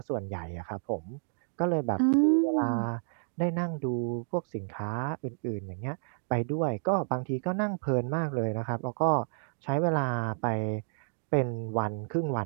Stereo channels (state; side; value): silent; left; digital silence